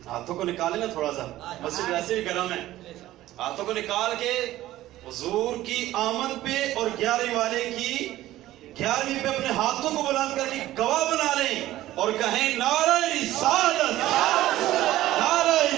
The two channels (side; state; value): left; quieter; 15.1 dB